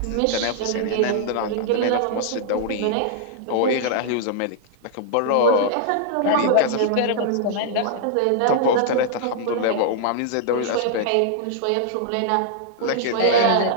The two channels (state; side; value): different; both; correlation -0.01